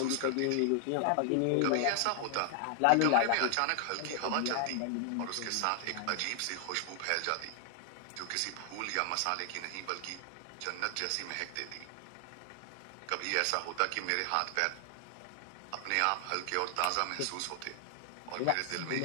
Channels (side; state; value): both; different; correlation 0.00